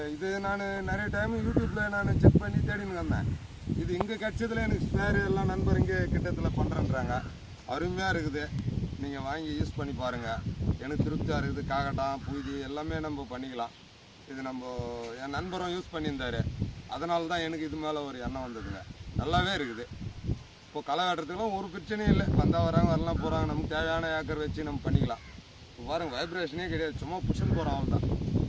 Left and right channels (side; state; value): both; identical; correlation 1.00